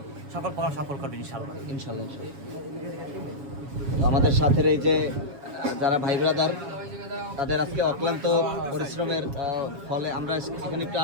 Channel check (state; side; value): late; left; 7.2 ms